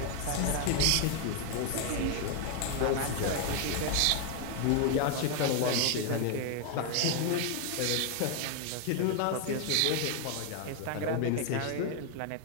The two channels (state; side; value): different; both; correlation 0.01